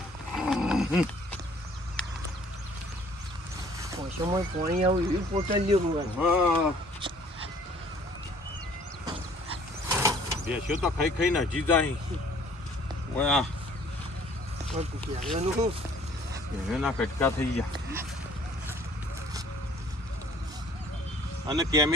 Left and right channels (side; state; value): both; normal; correlation 0.56